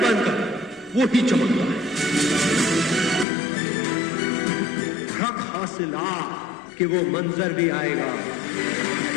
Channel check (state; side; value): drops out; right; at 3.2 s